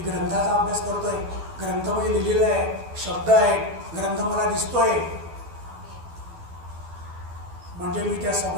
ग्रंथाचा अभ्यास करतोय, ग्रंथामध्ये लिहिलेलं आहे, शब्द आहेत, ग्रंथ मला दिसतोय, म्हणजे मी त्या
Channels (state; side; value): late; left; 12 ms